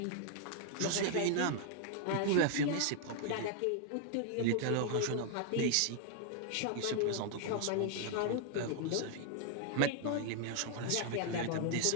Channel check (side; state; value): both; different; correlation 0.00